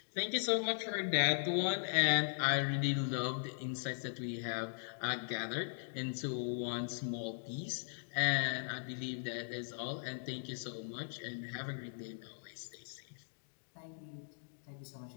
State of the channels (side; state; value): right; silent; digital silence